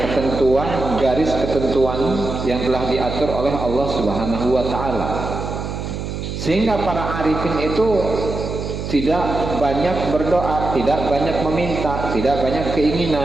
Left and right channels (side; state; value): right; noise; hum, 6 dB below the sound